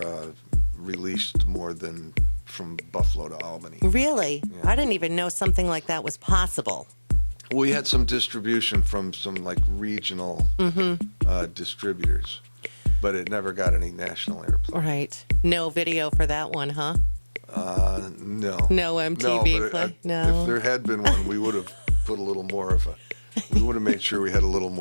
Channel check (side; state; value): both; inverted; correlation -1.00